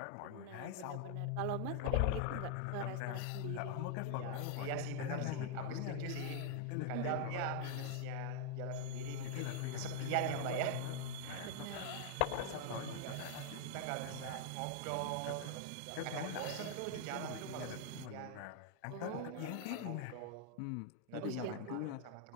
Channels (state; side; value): different; both; correlation 0.00